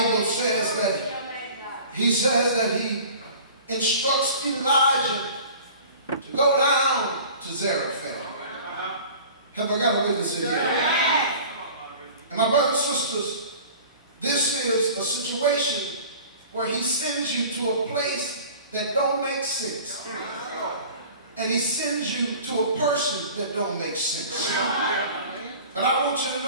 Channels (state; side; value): inverted; both; correlation -0.43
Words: says that he instructs Elijah to go down to Zarephath. Have I got a witness in here? And my brothers and sisters, this is a situation where he sends you to a place that don't make sense. And he sends you to a person that don't make sense. But I want you to